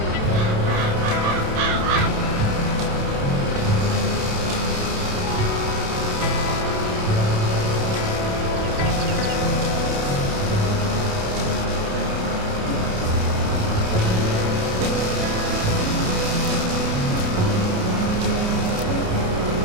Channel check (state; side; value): late; left; 28 ms